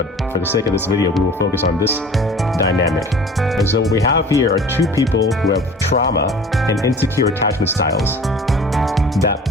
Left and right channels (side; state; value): both; normal; correlation 0.45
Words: for the sake of this video, we will focus on this dynamic. And so what we have here are two people who have trauma and insecure attachment styles that